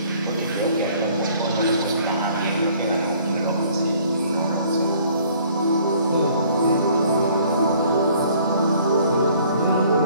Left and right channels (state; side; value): inverted; both; correlation -0.57